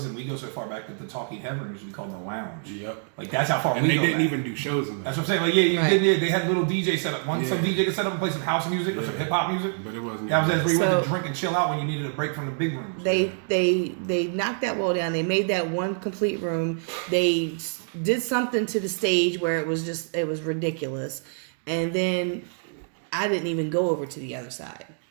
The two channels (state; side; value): silent; left; 61 dB below the other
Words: we go so far back that the Talking Head room usually called the lounge. Yep. Like that's how far And we they go didn't back. even do shows in there. That's what I'm saying. Like yeah, Right. they had little DJ set up. Some DJ could set up and play some house music or some hip hop music. But it wasn't. That was where you went So- to drink and chill out when you needed a break from the big rooms. They knocked that wall down. They made that one complete room. They did something to the stage where it was ridiculous. And then I didn't even go over to the other side.